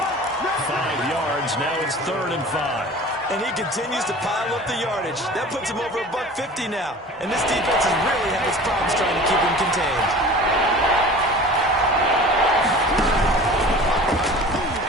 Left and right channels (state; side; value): normal; both; correlation 0.41